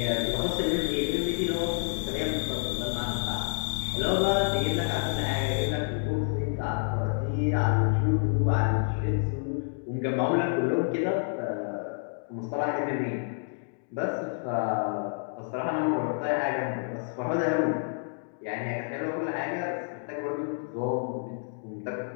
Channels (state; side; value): silent; right; digital silence